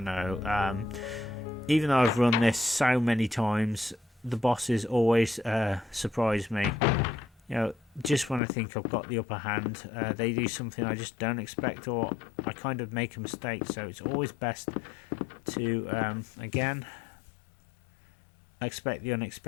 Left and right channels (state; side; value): drops out; right; at 8.4 s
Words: know. Even though I've run this so many times, the bosses always surprise me. You know, just when I think I've got the upper hand, they do something I just don't expect, or I kind of make a mistake. So it's always best to again expect the